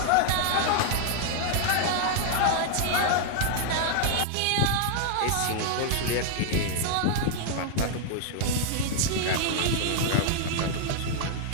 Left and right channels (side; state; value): both; different; correlation 0.00